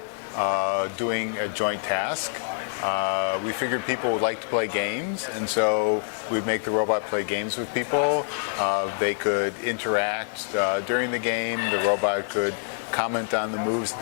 doing a joint task. We figured people would like to play games, and so we'd make the robot play games with people. They could interact during the game. The robot could comment on the moves that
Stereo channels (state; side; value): silent; right; digital silence